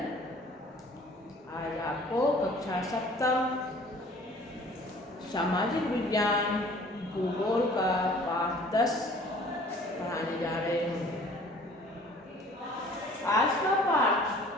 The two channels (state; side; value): normal; both; correlation 0.51